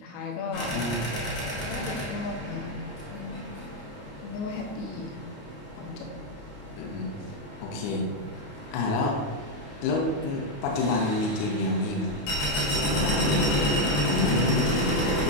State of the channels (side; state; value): right; late; 28 ms